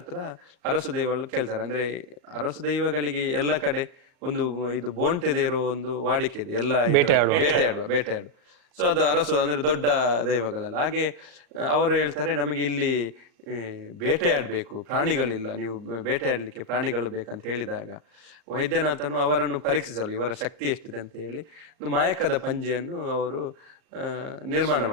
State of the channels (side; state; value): left; late; 38 ms